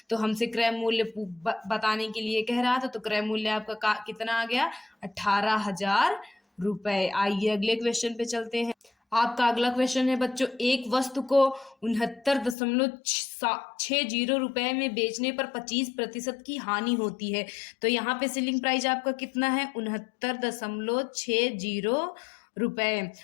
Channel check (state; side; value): drops out; right; at 12.6 s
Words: तो हमसे क्रय मूल्य बताने के लिए कह रहा था, तो क्रय मूल्य आपका कितना आ गया 18,000 रुपए। आइए अगले क्वेश्चन पे चलते हैं। आपका अगला क्वेश्चन है बच्चों, एक वस्तु को 69.60 रुपए में बेचने पर 25% की हानि होती है। तो यहाँ पे सेलिंग प्राइस आपका कितना है 69.60 रुपए,